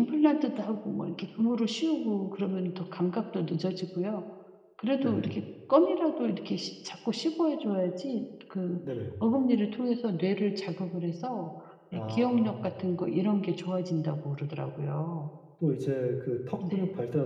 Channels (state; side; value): identical; both; correlation 1.00